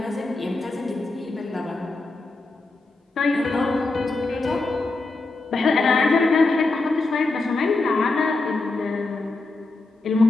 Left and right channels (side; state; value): right; quieter; 3.3 dB